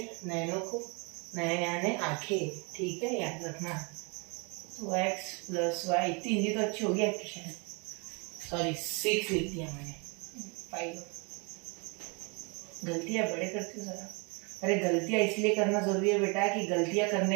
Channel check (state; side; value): quieter; left; 32.3 dB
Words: नयनों को, नयन यानी आंखें, ठीक है, याद रखना। तो x प्लस वाई, इतनी हिंदी तो अच्छी होगी आपकी शायद। सॉरी 6 लिख दिया मैंने, 5। गलतियां बड़े करते हो जरा। अरे गलतियां इसलिए करना जरूरी है बेटा कि गलतियां